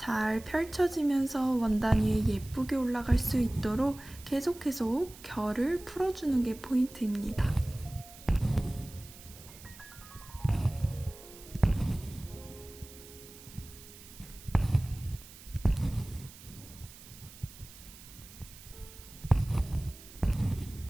펼쳐지면서 원단 위에 예쁘게 올라갈 수 있도록 계속 결을 풀어주는 게 포인트입니다.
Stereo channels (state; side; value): noise; right; hiss, 18 dB below the sound